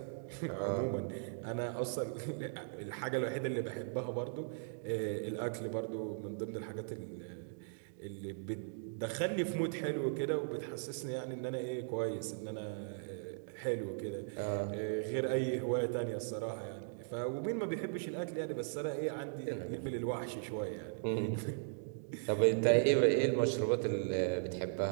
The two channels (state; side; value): silent; left; digital silence